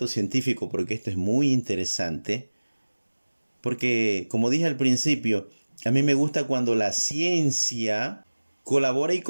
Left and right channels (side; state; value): both; inverted; correlation -1.00